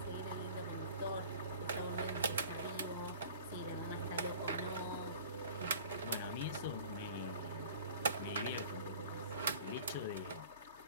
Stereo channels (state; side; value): inverted; both; correlation -0.46